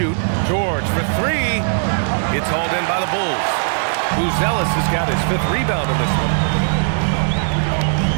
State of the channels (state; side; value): silent; left; digital silence